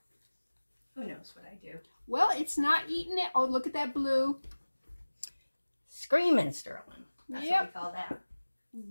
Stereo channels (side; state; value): both; inverted; correlation -1.00